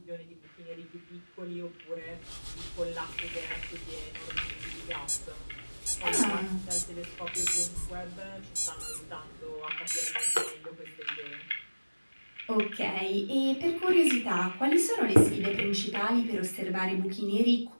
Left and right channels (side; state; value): both; inverted; correlation -1.00